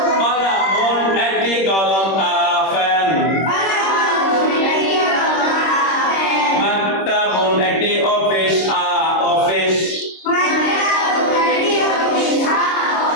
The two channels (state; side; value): late; right; 26 ms